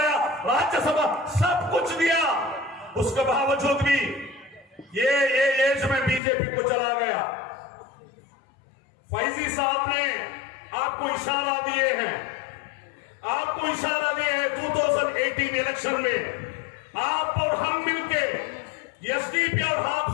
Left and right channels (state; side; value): drops out; right; at 6.2 s